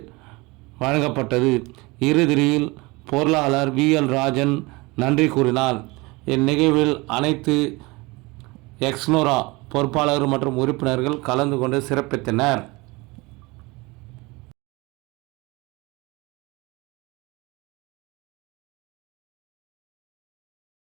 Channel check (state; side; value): quieter; left; 24.0 dB